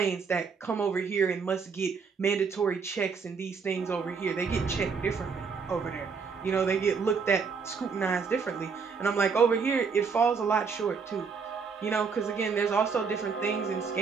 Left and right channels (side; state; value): left; quieter; 5.4 dB